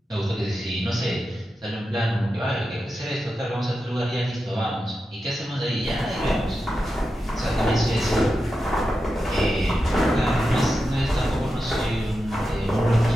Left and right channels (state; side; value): normal; both; correlation 0.90